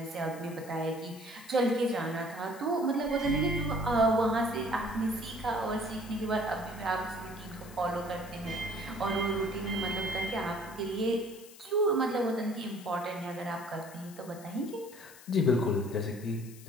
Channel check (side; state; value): left; noise; hiss, 19 dB below the sound